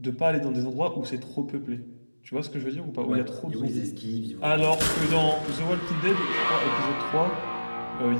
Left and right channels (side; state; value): both; inverted; correlation -1.00